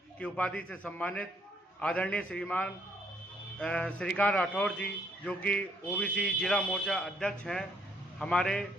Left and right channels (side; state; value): both; normal; correlation 0.68